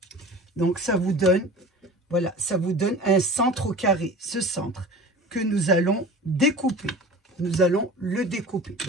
Donc, ça vous donne, voilà, ça vous donne un centre au carré. Ce centre que nous allons découper. Nous allons le découper.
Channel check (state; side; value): normal; both; correlation 0.38